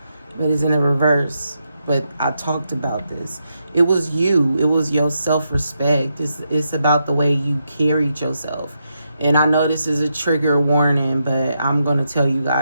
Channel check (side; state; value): both; inverted; correlation -0.83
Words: But it's in a reverse. But I talked about this. It was you. It was your self-respect. It's about the way you carried yourself. And I know this is a trigger warning, but I'm going to tell you